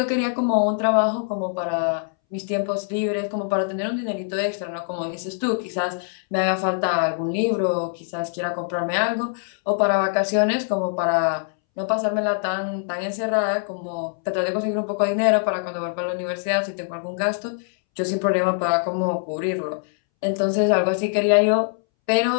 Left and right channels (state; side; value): silent; right; 62 dB below the other